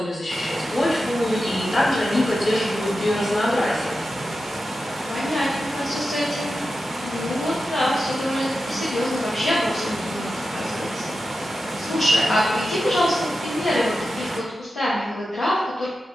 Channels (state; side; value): normal; both; correlation 0.91